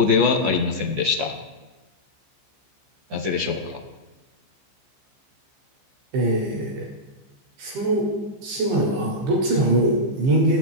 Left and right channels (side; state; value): left; late; 15 ms